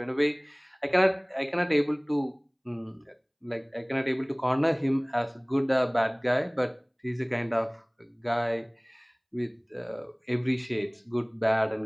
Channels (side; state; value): both; identical; correlation 1.00